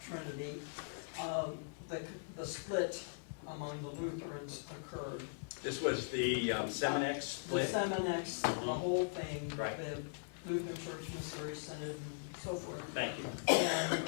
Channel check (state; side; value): silent; right; 51 dB below the other